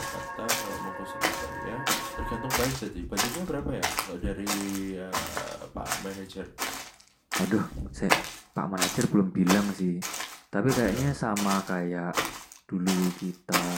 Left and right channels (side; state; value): both; identical; correlation 1.00